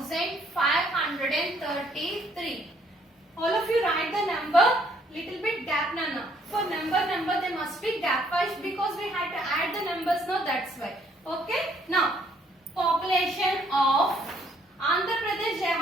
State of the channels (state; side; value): normal; both; correlation 0.66